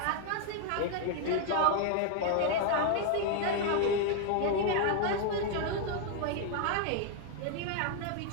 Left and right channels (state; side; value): different; both; correlation 0.00